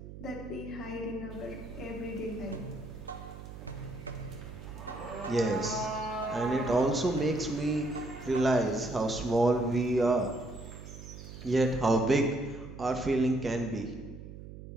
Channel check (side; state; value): right; noise; hum, 13 dB below the sound